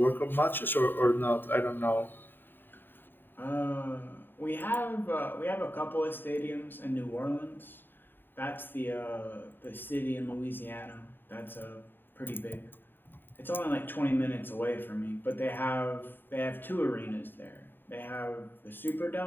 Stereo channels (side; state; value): right; late; 0.094 ms